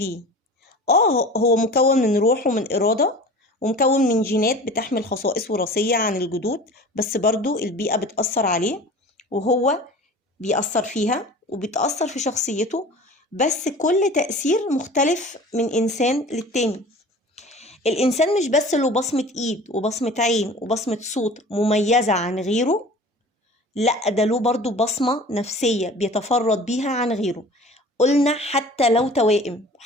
هو مكون من روح ومن إرادة، ومكون من جينات بتحمل خصائص وراثية عن الجدود، بس برضو البيئة بتأثر عليه وهو بيأثر فيها وبتأثر في شخصيته، بس كل تأثير مختلف من إنسان للتاني. الإنسان مش بس له بصمة إيد وبصمة عين وبصمة صوت مميزة عن غيره، لأ ده له برضو بصمة نفسية بيتفرد بيها عن غيره. قلنا حتى لو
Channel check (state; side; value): normal; both; correlation 0.41